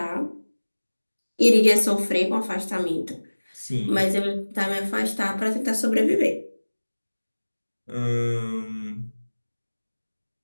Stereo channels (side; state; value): both; inverted; correlation -1.00